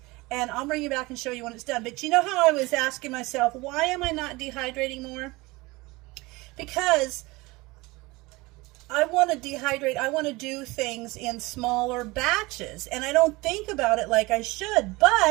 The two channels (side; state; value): left; quieter; 22.6 dB